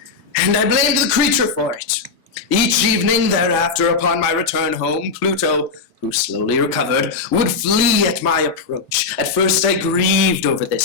And I blamed the creature for it. Each evening thereafter, upon my return home, Pluto, who slowly recovered, would flee at my approach. At first I grieved over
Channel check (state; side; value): quieter; right; 4.6 dB